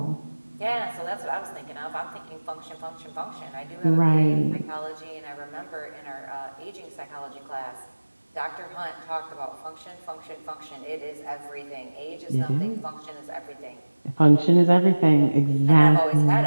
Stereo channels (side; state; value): both; inverted; correlation -1.00